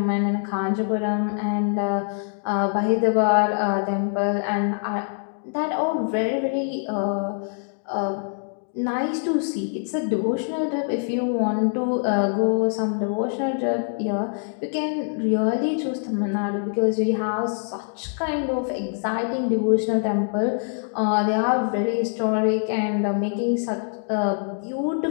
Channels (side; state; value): right; silent; 62 dB below the other